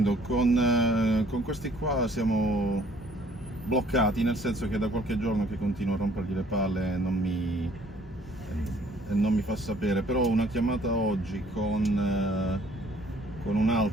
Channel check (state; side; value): normal; both; correlation 0.59